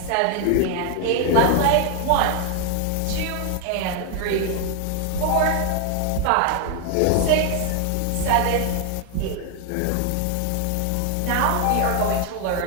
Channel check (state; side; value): different; both; correlation 0.00